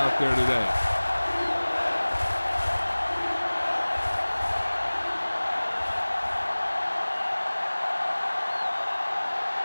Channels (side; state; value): both; inverted; correlation -1.00